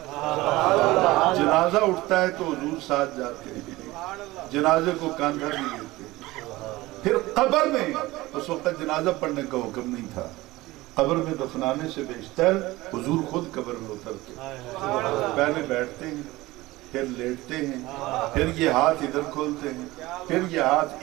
جنازہ اٹھتا ہے تو حضور ساتھ جاتے ہیں، جنازے کو کاندھا بھی دیتے ہیں، پھر قبر میں اس وقت جنازہ پڑھنے کا حکم نہیں تھا، قبر میں دفنانے سے بیشتر حضور خود قبر میں اترتے، پہلے بیٹھتے ہیں، پھر لیٹتے ہیں، پھر یہ ہاتھ ادھر کھولتے ہیں، پھر یہ ہاتھ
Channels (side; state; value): left; quieter; 19.1 dB